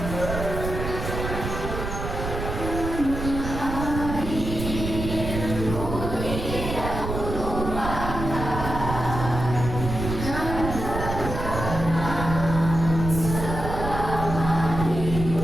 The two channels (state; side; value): noise; right; rumble, 5 dB below the sound